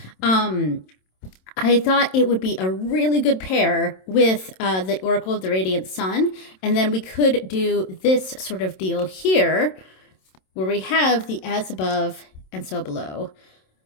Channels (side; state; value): right; late; 27 ms